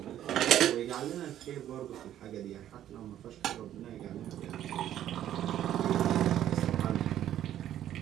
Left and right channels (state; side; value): quieter; left; 11.6 dB